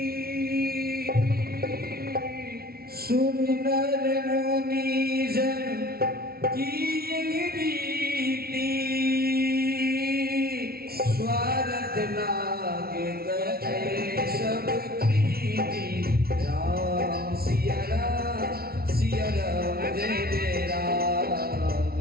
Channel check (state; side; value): late; left; 0.44 ms